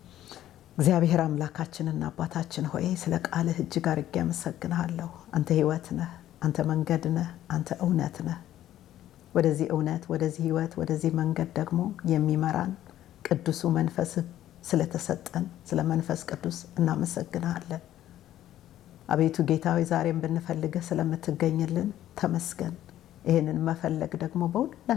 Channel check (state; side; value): quieter; right; 12.7 dB